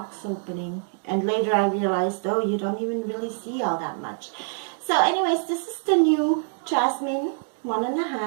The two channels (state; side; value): silent; left; 62 dB below the other